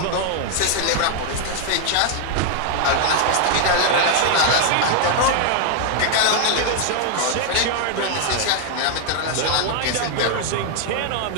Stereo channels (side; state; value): both; different; correlation 0.00